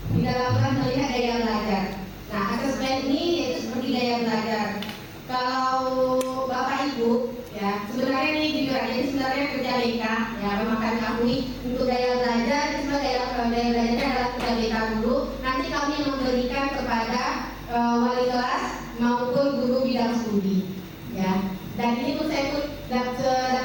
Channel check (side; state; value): both; identical; correlation 1.00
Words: di dalam kelas melihat daya belajar. Nah, asesmen ini yaitu seperti daya belajar. Kalau Bapak Ibu, ya sebenarnya ini jujur aja, ini sebenarnya kerja BK, ya memang kami akui untuk daya belajar, daya belajarnya adalah kerja BK dulu. Nanti kami memberikan kepada wali kelas maupun guru bidang studi, ya. Dan ini pun saya pun